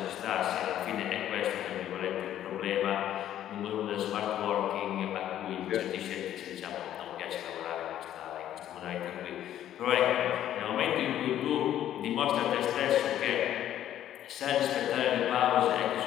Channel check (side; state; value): right; quieter; 11.6 dB